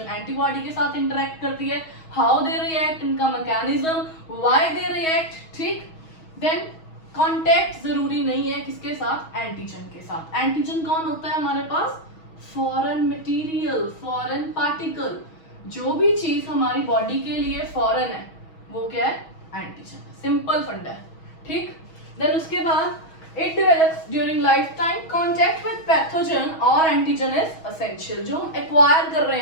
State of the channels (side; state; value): right; late; 6.2 ms